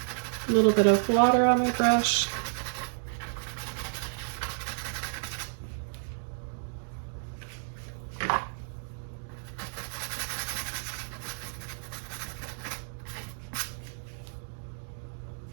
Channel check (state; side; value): silent; left; digital silence